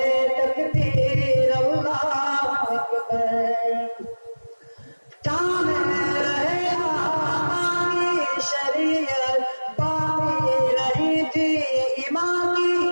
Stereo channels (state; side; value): inverted; both; correlation -1.00